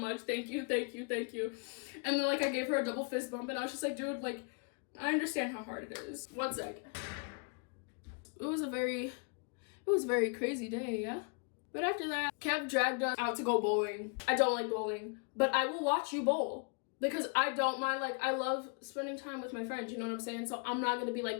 Thank you. And then like I gave her a double fist bump and I was just like, dude, like I understand how hard it is. One sec. It was a very crazy day, yeah? But after that, Kev dragged us out to go bowling. I don't like bowling, but I will watch you bowl. Because I don't mind, like, I love spending time with my friends, you know what I'm saying? So I'm not gonna be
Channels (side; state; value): right; quieter; 38.8 dB